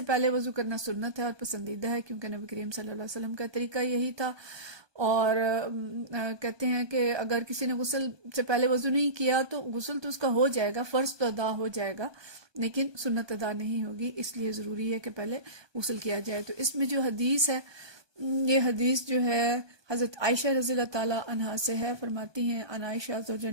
پہلے وضو کرنا سنت ہے اور پسندیدہ ہے، کیونکہ نبی کریم صلی اللہ علیہ وسلم کا طریقہ یہی تھا۔ اور کہتے ہیں کہ اگر کسی نے غسل سے پہلے وضو نہیں کیا تو غسل تو اس کا ہو جائے گا، فرض تو ادا ہو جائے گا، لیکن سنت ادا نہیں ہوگی، اس لیے ضروری ہے کہ پہلے غسل کیا جائے۔ تو اس میں جو حدیث ہے، یہ حدیث جو ہے حضرت عائشہ رضی اللہ تعالی عنہا سے ہے، فرماتی ہیں ان عائشہ زوج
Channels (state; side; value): late; left; 1.2 ms